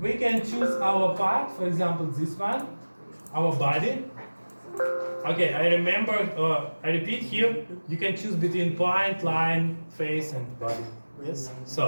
we can choose our part, for example this one, our body. Okay, I remember, I repeat here, you can choose between point, line, face and body. Yes.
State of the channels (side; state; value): both; inverted; correlation -1.00